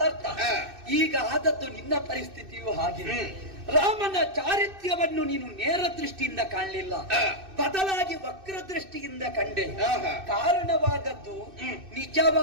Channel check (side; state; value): left; late; 2.6 ms